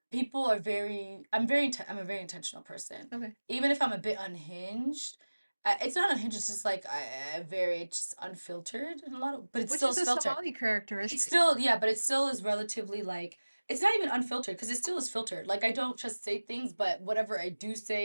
people are I'm a very intentional person. Okay. Even if I'm a bit unhinged, it's not unhinged, it's just like I very just unfiltered in a lot of, but it Which still is is a filtered. Somali It's characteristic. still, yeah, but it still is relatively like, it's not even unfiltered because it still is filtered. Like I don't just say things, but whatever I do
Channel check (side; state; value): both; inverted; correlation -1.00